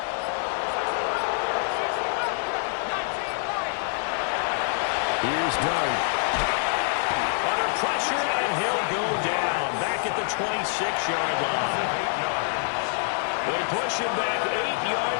Here's Dart. Under pressure, and he'll go down. Back at the 26-yard line. They push him back 8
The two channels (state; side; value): silent; right; 61 dB below the other